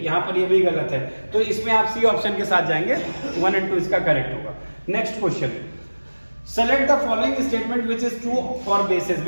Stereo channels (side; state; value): both; inverted; correlation -1.00